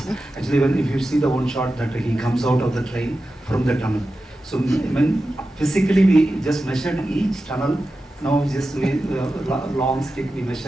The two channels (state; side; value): normal; both; correlation 0.92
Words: Actually, if you see the one shot that he comes out of the train from the tunnel. So when physically we just measured each tunnel, now just long stick, we